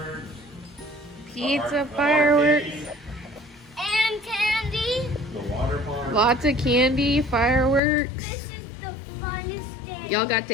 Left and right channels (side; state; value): right; drops out; at 7.8 s